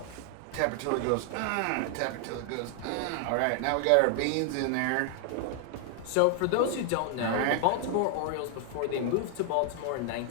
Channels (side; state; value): both; different; correlation 0.00